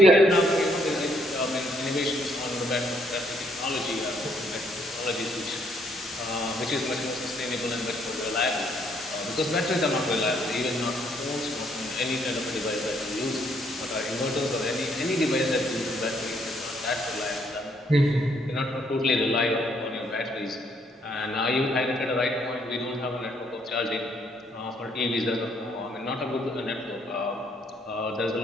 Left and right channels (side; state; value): both; normal; correlation 0.69